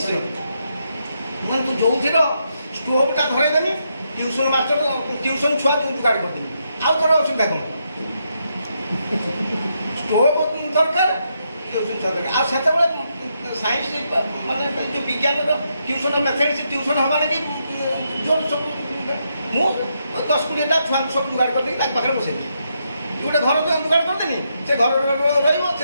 ମୁଁ ତୁ ଯେଉଁଥିର ଷ୍ଟୋଭଟା ଧରାଇଦେବି, ଟ୍ୟୁସନ୍ ମାଷ୍ଟର ଟ୍ୟୁସନ୍ ଛୁଆ ଯୋଗାଡ଼ କରିଦେବି। ଆଉ ତୋର ଅସୁବିଧା କ'ଣ? ଷ୍ଟୋଭ ଦରକାର, ଟ୍ୟୁସନ୍ ଛୁଆ ଦରକାର। ଆଉ ସେତେବେଳେ ସାଇନ୍ସ ମାନେ ଯେଉଁ ବିଜ୍ଞାନର ଟ୍ୟୁସନ୍ ମ୍ୟାଥମେଟିକ୍ସ ଟ୍ୟୁସନ୍ ହେବା ଲାଗି ଜୋର ସବୁ ମୁଁ 10-20ଟା ଛୁଆଙ୍କୁ ସବୁ ଯୋଗାଡ଼ କରିଦେଇକି ତାଙ୍କ ପାଖରେ ବସେଇବି। ଗୋଟେ ଘର ଯୋଗାଡ଼ କରିଦେନି, ସେ ଘର ରହିବ, ସେ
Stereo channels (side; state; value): both; inverted; correlation -0.80